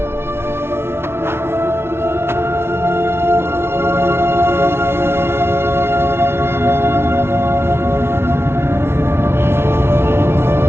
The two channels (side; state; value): left; late; 0.12 ms